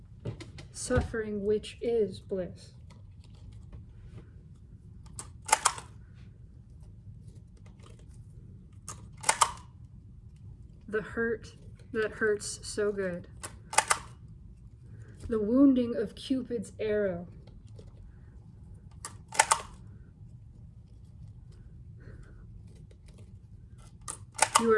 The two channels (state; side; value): identical; both; correlation 1.00